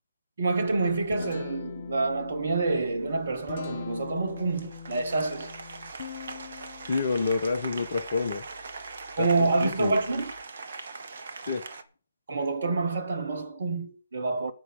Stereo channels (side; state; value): both; inverted; correlation -0.80